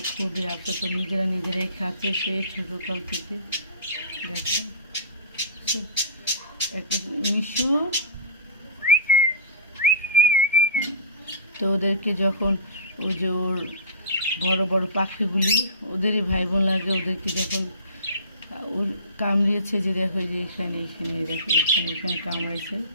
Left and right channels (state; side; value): inverted; both; correlation -0.35